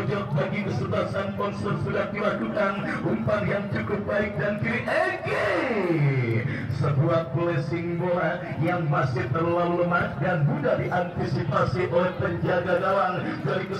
bagi kesebelasan Ponser sudah dilakukan, umpan yang cukup baik dan kiri sebuah blessing bola yang masih terlalu lemah dan mudah diantisipasi oleh penjaga gawang dari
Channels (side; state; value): both; identical; correlation 1.00